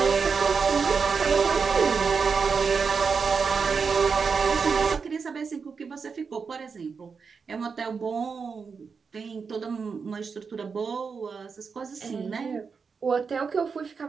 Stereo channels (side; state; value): left; quieter; 5.5 dB